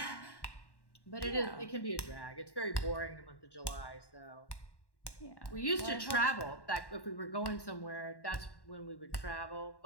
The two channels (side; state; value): right; late; 1.1 ms